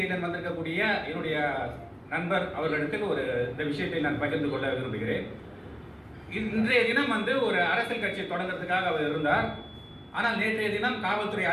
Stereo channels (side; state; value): both; identical; correlation 1.00